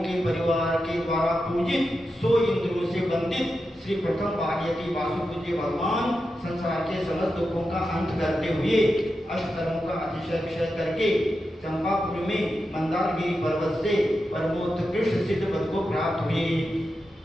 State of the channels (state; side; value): normal; both; correlation 0.89